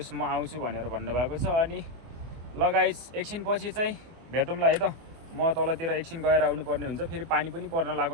म आउँछु भनेर भन्नुभएको छ। अनि लगाइस एकछिनपछि चाहिँ भेटौँला है त। म तलतिर एकछिन गएर आउनुपर्ने हुन्छ। फेरि पानी पनि पर्न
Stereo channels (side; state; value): left; late; 24 ms